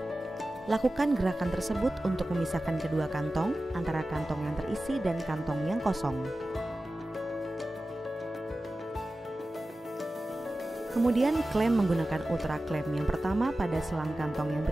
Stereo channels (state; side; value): normal; both; correlation 0.95